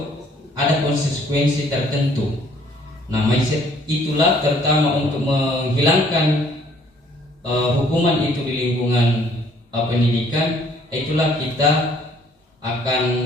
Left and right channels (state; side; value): normal; both; correlation 0.61